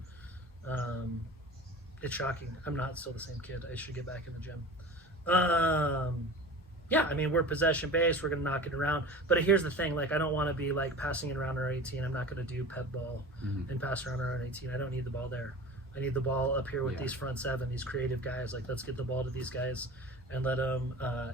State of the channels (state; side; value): normal; both; correlation 0.36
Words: It's shocking. I'm not still the same kid. I should get back in the gym. Yeah, I mean, we're possession based. We're gonna knock it around. But here's the thing: like, I don't want to be like passing it around our 18. I'm not gonna do pep ball and pass around our own 18. I don't need the ball there. I need the ball up here with these front 7, these creative guys. Like, let's get the ball to these guys and let them,